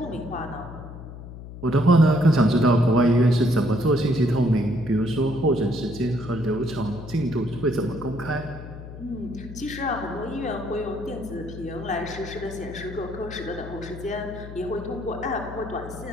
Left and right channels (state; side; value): noise; left; hum, 13 dB below the sound